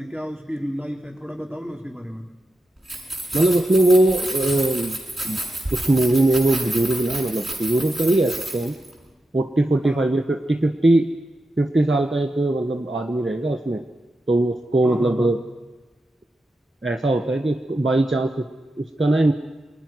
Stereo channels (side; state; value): both; normal; correlation 0.88